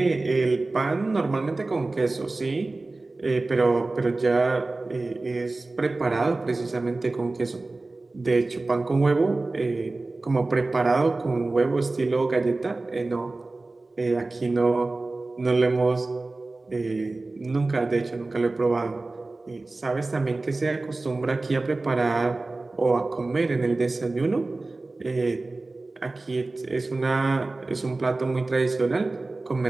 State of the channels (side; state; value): left; quieter; 3.2 dB